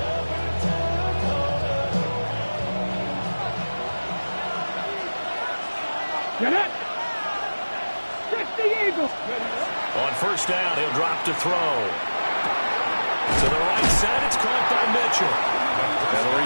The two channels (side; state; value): both; inverted; correlation -1.00